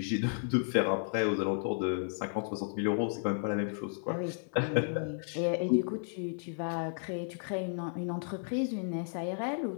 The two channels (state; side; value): silent; right; 56 dB below the other